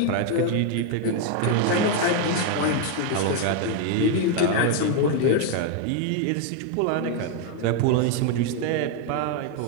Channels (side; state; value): both; different; correlation 0.01